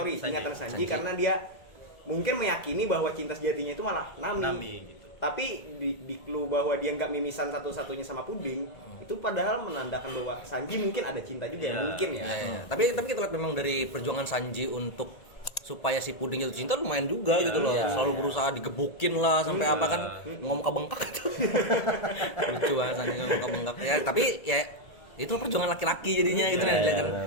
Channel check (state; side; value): late; right; 1.9 ms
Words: ingatan Sanji karena dia mungkin meyakini bahwa cinta sejatinya itu malah Nami gitu. tapi di clue bahwa dia nggak mimisan satu-satunya sama Puding itu padahal menandakan bahwa Sanji mungkin ada cinta juga ya mungkin ya. Iya. Tapi kita lihat memang dari perjuangan Sanji untuk supaya si Puding jatuh cinta lumayan juga gitu loh. Selalu berusaha digebukin lah sampai apa kan ngomong bengkak gitu. Lucu banget Sanji ngomong bengkak. Ya tapi ya itu perjuangan laki-laki jadinya gitu